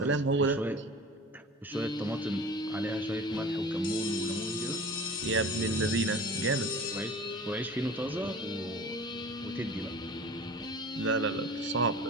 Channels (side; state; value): both; normal; correlation 0.40